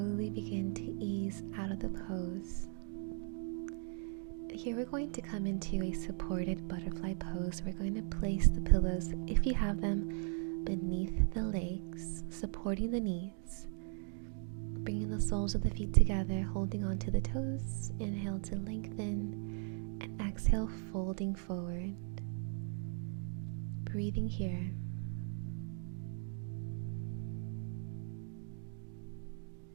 begin to ease out of the pose. Here we're going to come into a supported butterfly pose. We're going to place the pillows, if you have them, beneath the legs, supporting the knees. Bringing the soles of the feet together, holding onto the toes. Inhale to lengthen, and exhale, folding forward. Breathing here.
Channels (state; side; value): silent; left; 52 dB below the other